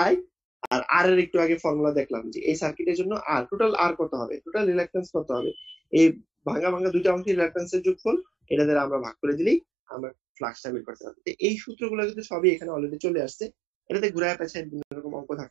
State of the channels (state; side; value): drops out; left; at 9.6 s